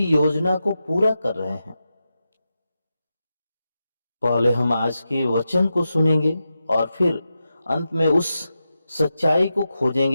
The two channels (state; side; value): inverted; both; correlation -0.89